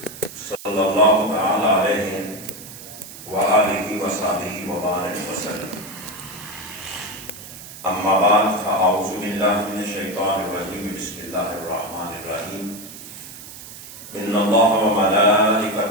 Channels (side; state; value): right; noise; hiss, 15 dB below the sound